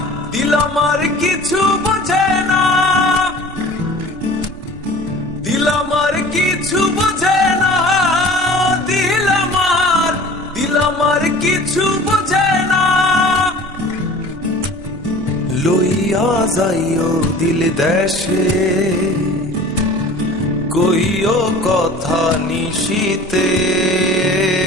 কিছু বোঝে না, দিল আমার কিছু বোঝে না, দিল আমার কিছু বোঝে না। লইয়া যাইও দিল দেশে, কইও কথা নিশিতে,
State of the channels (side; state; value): right; noise; rumble, 17 dB below the sound